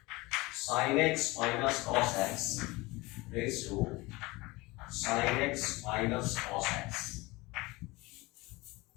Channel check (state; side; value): quieter; right; 22.4 dB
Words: sin x minus cos x raised to sin x minus cos x.